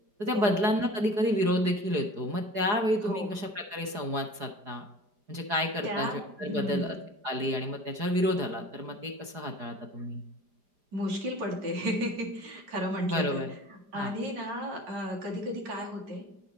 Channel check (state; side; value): late; left; 4.8 ms